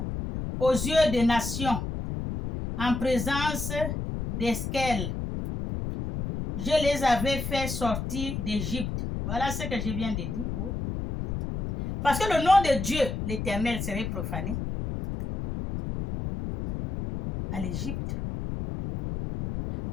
Aux yeux des nations, en présence d'Esquel. Je les avais fait sortir d'Égypte. Voilà ce que je viens de dire. Oui. Parce que le nom de Dieu, l'Éternel, serait profané à l'Égypte.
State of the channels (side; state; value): left; noise; rumble, 4 dB below the sound